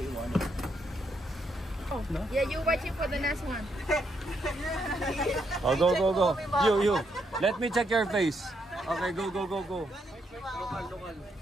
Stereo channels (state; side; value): normal; both; correlation 0.77